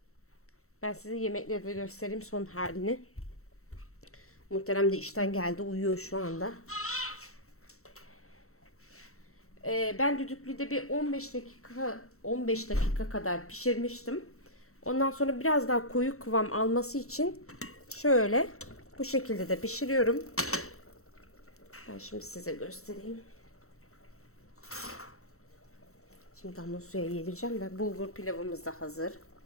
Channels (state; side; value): late; right; 0.63 ms